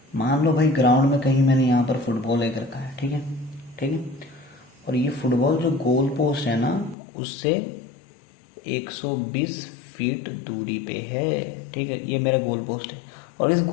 मान लो भाई ग्राउंड में कहीं मैंने यहाँ पर फुटबॉल एक रखा है, ठीक है, ठीक है। और ये फुटबॉल जो गोल पोस्ट है ना, उससे 120 फीट दूरी पे है, ठीक है। ये मेरा गोल पोस्ट है, और इस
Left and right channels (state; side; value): drops out; right; at 7.0 s